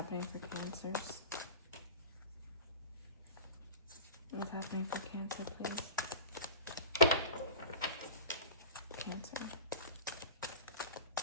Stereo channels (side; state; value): both; inverted; correlation -0.34